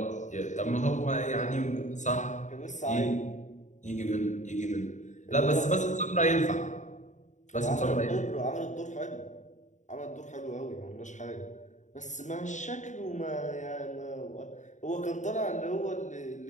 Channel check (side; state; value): right; late; 0.35 ms